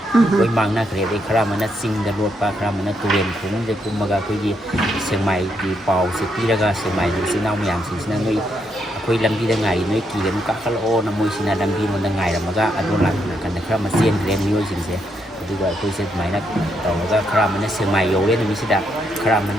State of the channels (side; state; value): both; normal; correlation 0.78